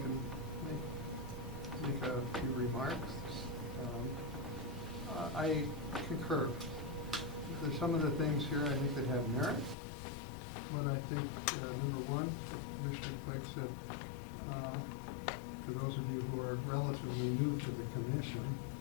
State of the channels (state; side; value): drops out; right; at 9.8 s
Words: make a few remarks. I concur. There's some of the things here I think that have merit, but I think, number one, Commissioner Clegg said, for those of you who are relatively new to the commission,